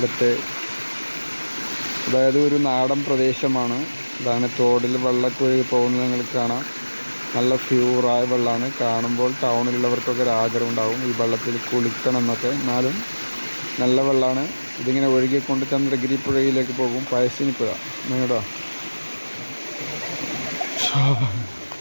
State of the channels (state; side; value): inverted; both; correlation -1.00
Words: അതായത് ഒരു നാടൻ പ്രദേശമാണ്. ഇതാണ് തോടിൽ വെള്ളമൊക്കെ ഒഴുകി പോകുന്നത് നിങ്ങൾക്ക് കാണാം. നല്ല പ്യൂറായ വെള്ളമാണ്. കാണുമ്പോൾ ടൗണിലുള്ളവർക്കൊക്കെ ഒരു ആഗ്രഹം ഉണ്ടാവും ഈ വെള്ളത്തിൽ കുളിക്കണം എന്നൊക്കെ. എന്നാലും നല്ല വെള്ളമാണ്. ഇതിങ്ങനെ ഒഴുകിക്കൊണ്ട് ചന്ദ്രഗിരി പുഴയിലേക്ക് പോകും. പഴശ്ശിനി പുഴ നിങ്ങടോ